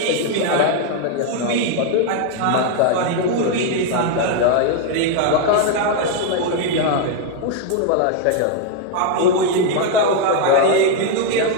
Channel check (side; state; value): both; different; correlation 0.01